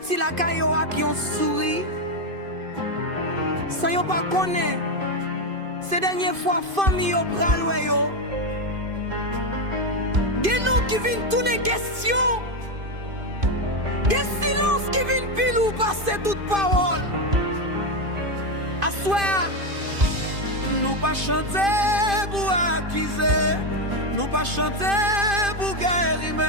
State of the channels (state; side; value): late; left; 2.5 ms